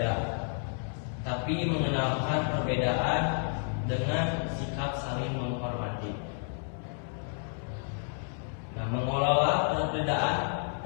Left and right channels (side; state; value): right; silent; 57 dB below the other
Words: tapi mengenalkan perbedaan dengan sikap saling menghormati. Nah, mengelola perbedaan